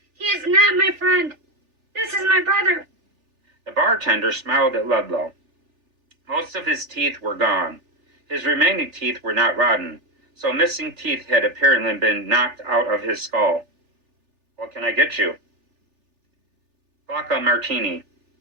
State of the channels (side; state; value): left; late; 3.4 ms